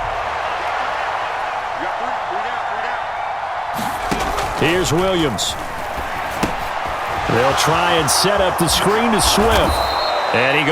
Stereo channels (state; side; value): identical; both; correlation 1.00